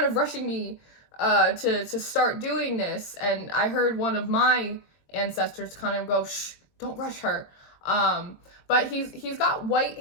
of rushing me to start doing this, and I heard one of my ancestors kind of go, "Shh, don't rush her." But he's got white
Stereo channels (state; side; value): late; right; 22 ms